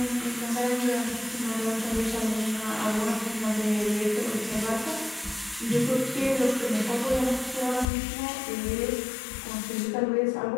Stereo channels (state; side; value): drops out; right; at 7.9 s